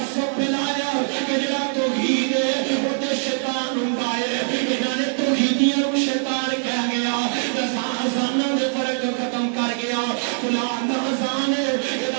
پھیلایا کہ جڑا توحید ہے وہ تے شیطان ہوندا ہے انہاں نے توحیدیاں کو شیطان کہہ گیا اذاناں دے فرق ختم کر گیا فلاں دا اذان ہے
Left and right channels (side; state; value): left; silent; 55 dB below the other